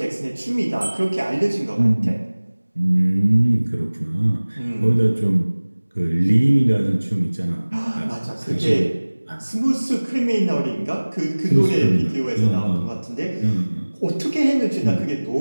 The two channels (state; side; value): inverted; both; correlation -1.00